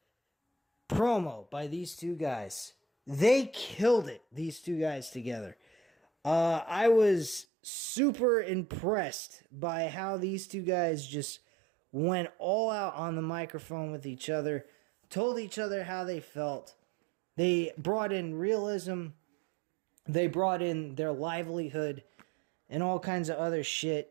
promo by these two guys. They killed it, these two guys together. I was super impressed by how these two guys just went all out on the microphone with each other, told each other how they felt. They brought in realism. They brought in their livelihood and all kinds of other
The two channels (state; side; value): drops out; left; at 7.5 s